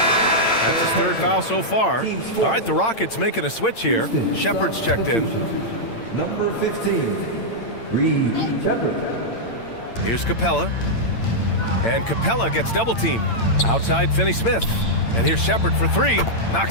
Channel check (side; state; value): right; late; 8.8 ms